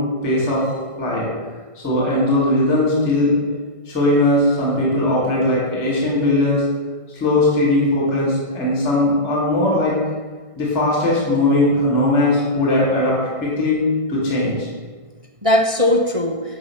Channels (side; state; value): left; late; 1.6 ms